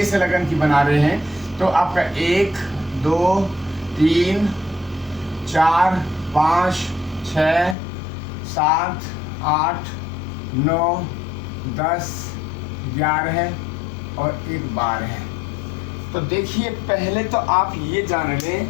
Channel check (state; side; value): drops out; right; at 7.8 s